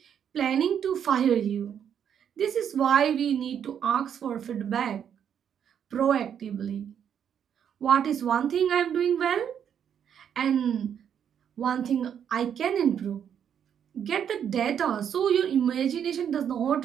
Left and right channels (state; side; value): quieter; left; 8.6 dB